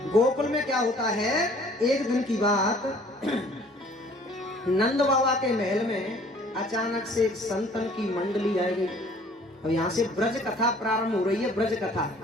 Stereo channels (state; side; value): normal; both; correlation 0.54